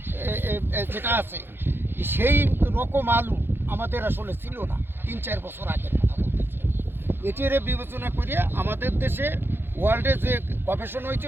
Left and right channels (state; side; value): late; left; 0.10 ms